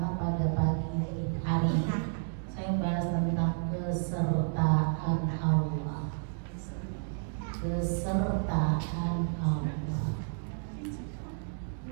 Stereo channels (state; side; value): silent; left; digital silence